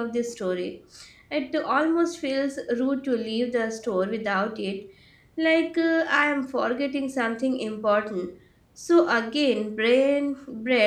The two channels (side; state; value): both; identical; correlation 1.00